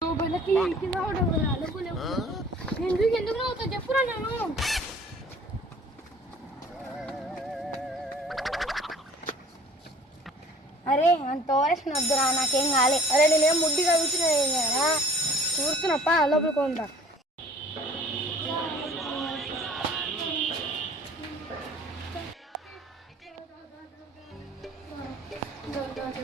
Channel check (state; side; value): normal; both; correlation 0.51